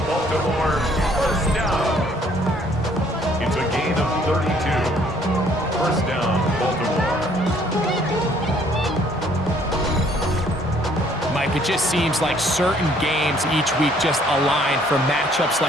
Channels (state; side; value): normal; both; correlation 0.62